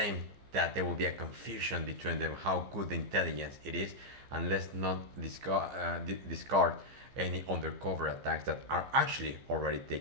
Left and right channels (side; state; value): left; late; 15 ms